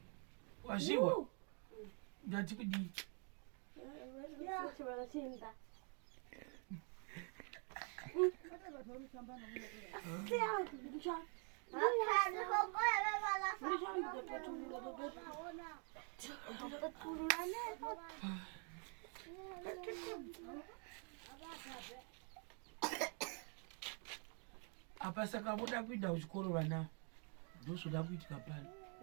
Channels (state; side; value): quieter; left; 39.5 dB